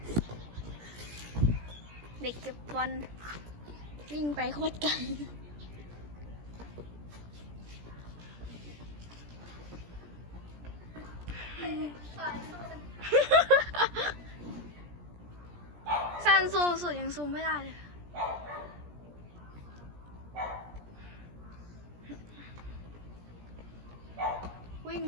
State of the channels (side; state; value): left; late; 17 ms